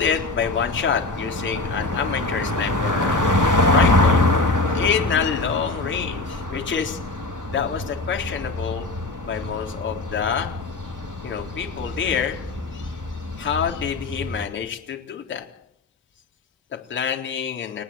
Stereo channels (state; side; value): quieter; right; 3.5 dB